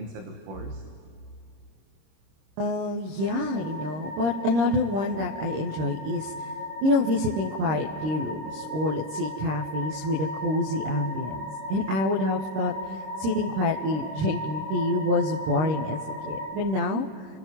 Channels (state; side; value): late; left; 26 ms